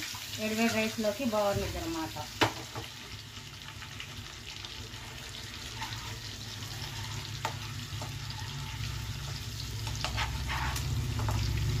వేడివేడి రైస్లోకి బాగుంటుంది అన్నమాట.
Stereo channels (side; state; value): both; identical; correlation 1.00